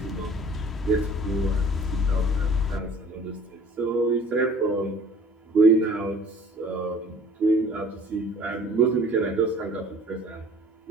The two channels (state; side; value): normal; both; correlation 0.50